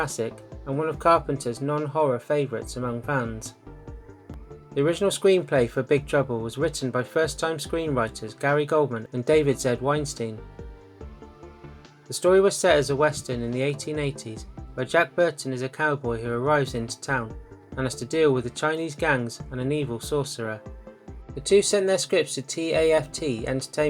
and one of Carpenter's non-horror favourites among fans. The original screenplay for Big Trouble was written by first-time screenwriters Gary Goldman and David Z. Weinstein. The story was set as a western in the 1880s, where Jack Burton is a cowboy who arrives into town and has to deal with the Chinese gangs and an evil sorcerer. The two sent their scripts to TAFT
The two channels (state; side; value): identical; both; correlation 1.00